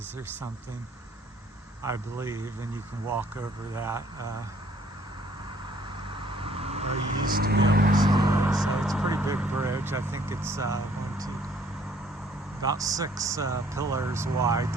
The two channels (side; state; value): both; normal; correlation 0.61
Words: or something, I believe, and you can walk over that. Or you used to be able to. So it's a pretty big bridge. I think it's about 6 pillars wide.